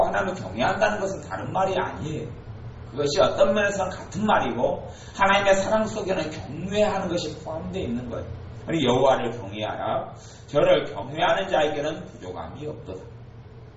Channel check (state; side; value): identical; both; correlation 1.00